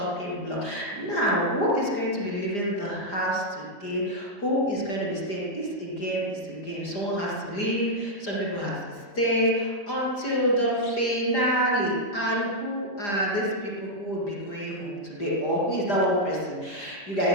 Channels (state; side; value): late; right; 5.0 ms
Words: block. Now, who is going to be leaving the house today? Who is going to be staying? It's a game, it's a game. Someone has to leave, some people have to stay until the finale. And who are these people who will be going home today? Or who is that one person you